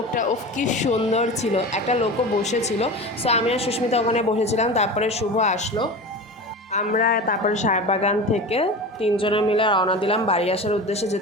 ওফ কি সুন্দর ছিল, একটা লোকও বসেছিল। সো আমি আর সুস্মিতা ওখানে বসেছিলাম। তারপরে শুভ আসলো। আমরা তারপরে সাহেববাগান থেকে তিনজনে মিলে রওনা দিলাম বাড়ি আসার উদ্দেশ্যে,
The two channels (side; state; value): both; normal; correlation 0.30